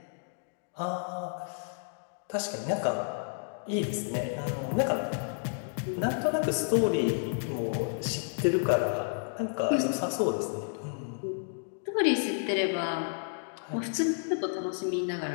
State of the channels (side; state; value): right; silent; digital silence